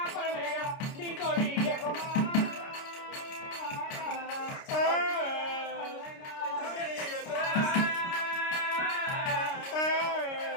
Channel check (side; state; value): right; late; 29 ms